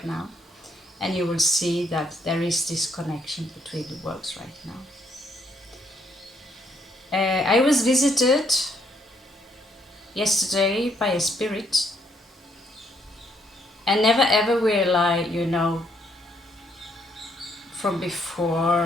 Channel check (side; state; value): both; normal; correlation 0.71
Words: now, and you will see that there is this connection between the worlds right now. I was visited yesterday by a spirit, and never ever will I, from